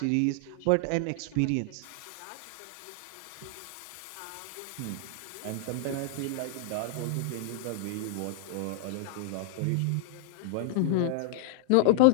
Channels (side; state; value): both; different; correlation 0.00